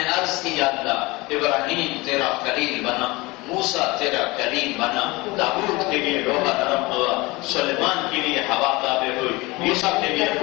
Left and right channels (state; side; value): quieter; right; 23.0 dB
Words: عرض کی یا اللہ ابراہیم تیرا خلیل بنا، موسیٰ تیرا کلیم بنا، داؤد کے لیے لوہا نرم ہوا، سلیمان کے لیے ہوا تابع ہوئی، عیسیٰ کے لیے